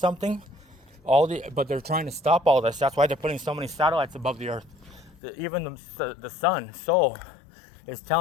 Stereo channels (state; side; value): drops out; right; at 5.2 s